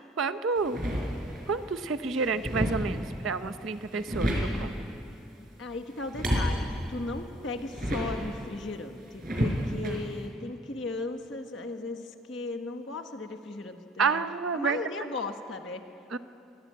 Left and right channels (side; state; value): both; normal; correlation 0.53